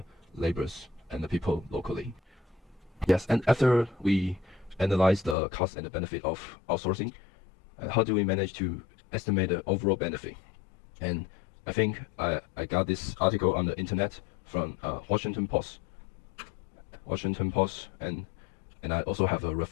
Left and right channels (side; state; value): right; drops out; at 5.4 s